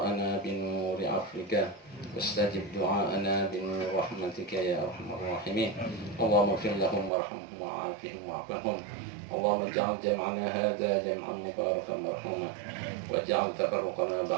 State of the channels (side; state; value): left; drops out; at 7.1 s